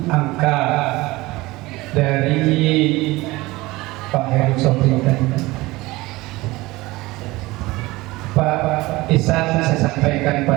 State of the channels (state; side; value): quieter; left; 20.4 dB